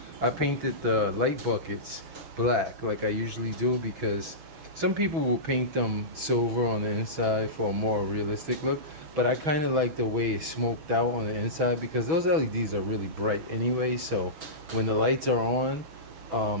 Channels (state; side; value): late; left; 6.3 ms